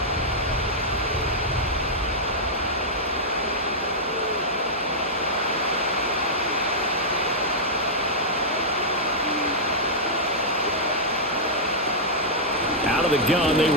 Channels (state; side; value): normal; both; correlation -0.09